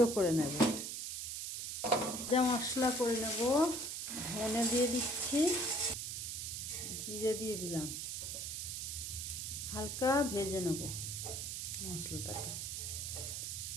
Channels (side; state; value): right; noise; hiss, 4 dB below the sound